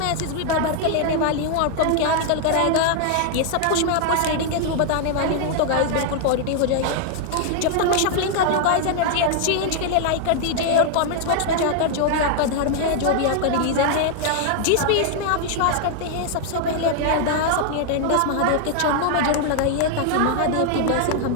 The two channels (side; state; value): both; different; correlation 0.00